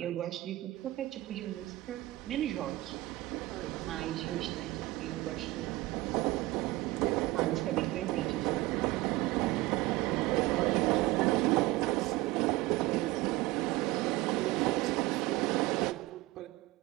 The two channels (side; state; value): left; quieter; 18.9 dB